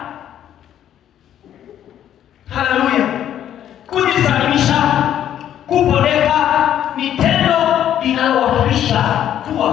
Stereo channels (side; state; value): right; quieter; 10.7 dB